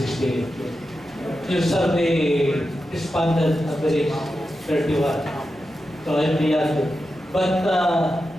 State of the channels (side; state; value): left; noise; hum, 28 dB below the sound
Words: Your survey responded average 31. So I'm beyond it. But